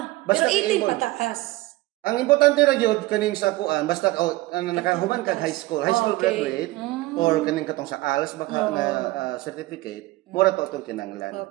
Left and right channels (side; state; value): left; quieter; 19.3 dB